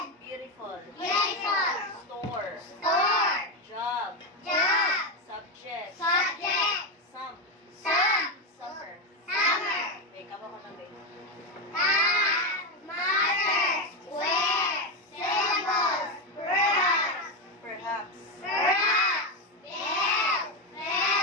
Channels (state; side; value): normal; both; correlation 0.11